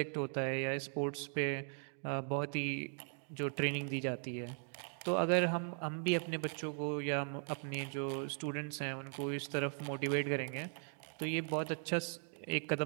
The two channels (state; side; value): silent; left; 52 dB below the other